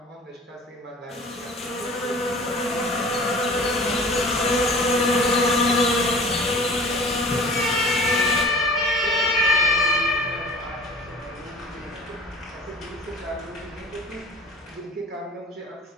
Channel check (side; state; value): both; normal; correlation 0.44